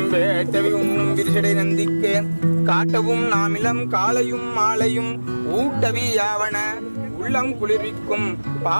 வேட்டவி உண்ணும் விரிசடை நந்திக்கு காட்டவும் நாமிலம் காலையும் மாலையும் ஊட்டவி யாவன உள்ளம் குளிர்விக்கும்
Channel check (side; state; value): both; inverted; correlation -1.00